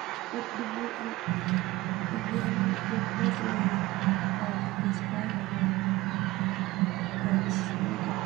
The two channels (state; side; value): quieter; left; 19.3 dB